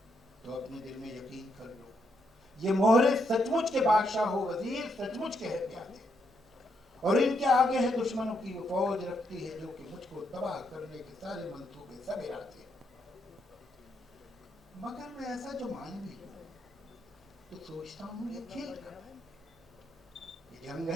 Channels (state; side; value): normal; both; correlation 0.78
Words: तो अपने दिल में यकीन कर लो, ये मोहरे सचमुच के बादशाह हो वजीर, सचमुच के है प्यादे, और इनके आगे है दुश्मनों की वो फौज रखती है जो कि मुझको तबाह करने के सारे मंसूबे सब इरादे। मगर मैं ऐसा जो मान भी लूं तो सोचता हूँ ये खेल क्या है। ये जंग